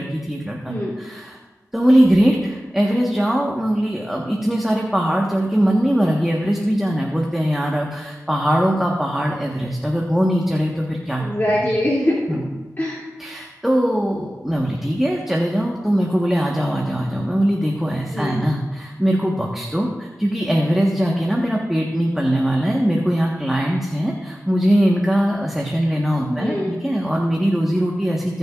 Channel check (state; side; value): normal; both; correlation 0.95